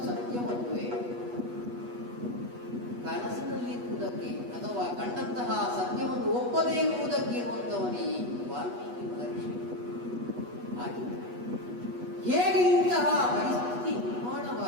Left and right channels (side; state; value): left; late; 8.2 ms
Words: ಸತ್ಯವಲ್ಲವೇ? ಕನಸಿನಲ್ಲಿರುವುದಕ್ಕೆ ಅಥವಾ ಕಂಡಂತಹ ಸತ್ಯವನ್ನು ಒಪ್ಪದೇ ಇರುವುದಕ್ಕೆ ಇರುವಂತವನೇ ಈ ವಾಲ್ಮೀಕಿ ಮಹರ್ಷಿ. ಹಾಗೆ ಹೇಗೆ ಇಂತಹ ಪರಿಸ್ಥಿತಿ